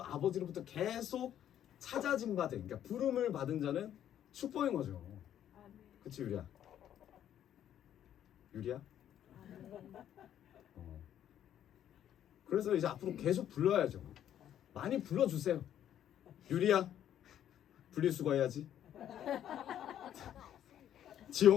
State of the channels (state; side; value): quieter; right; 10.7 dB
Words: 아버지로부터 계속 찾아진 바 된, 그러니까 부름을 받은 자는 축복인 거죠. 그치 유리야? 유리야? 그래서 이제 앞으로 계속 불러야죠. 많이 불러주세요. 유리야, 분리수거 해야지.